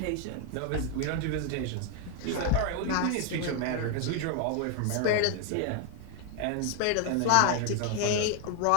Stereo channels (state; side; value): different; both; correlation 0.00